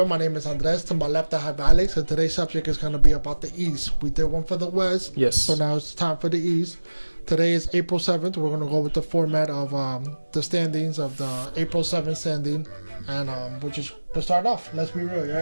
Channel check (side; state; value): both; inverted; correlation -1.00